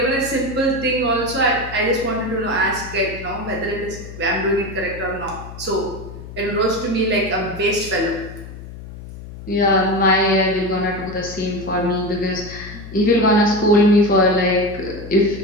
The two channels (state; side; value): noise; left; hum, 13 dB below the sound